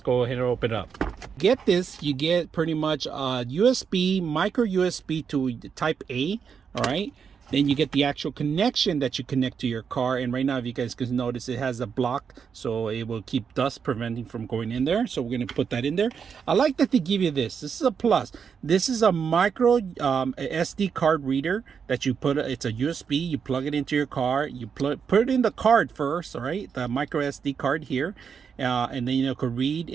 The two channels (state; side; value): quieter; left; 6.6 dB